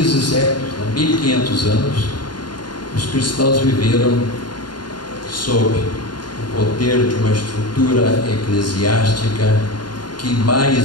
séculos, 1500 anos, os cristãos viveram sob o poder de uma estrutura eclesiástica que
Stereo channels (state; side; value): late; right; 0.71 ms